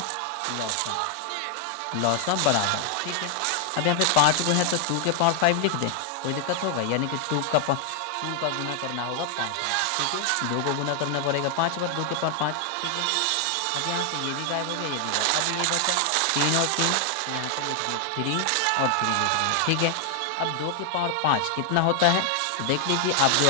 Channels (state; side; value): different; both; correlation 0.00